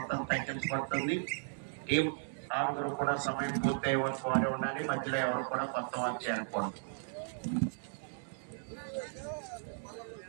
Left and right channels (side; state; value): left; silent; digital silence